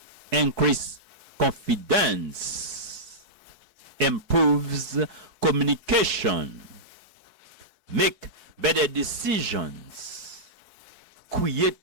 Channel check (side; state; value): left; late; 4.7 ms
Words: increase confidence, improves communication, make better decisions,